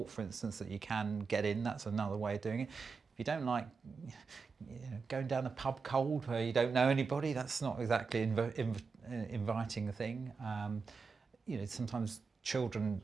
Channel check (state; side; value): quieter; left; 5.0 dB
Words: for instance, that you can get in, that's another way of doing it. If you don't like, you know, going down a pub cold where you don't know anybody, that's not exactly inviting a thing. You know, sometimes children